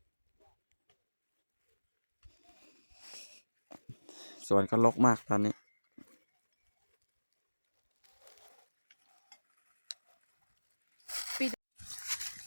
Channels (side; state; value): both; inverted; correlation -1.00